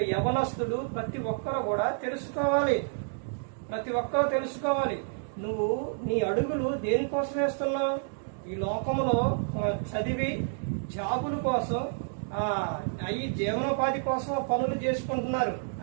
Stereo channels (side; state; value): left; silent; digital silence